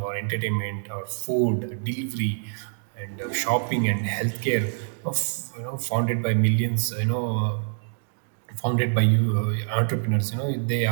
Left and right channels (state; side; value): silent; left; digital silence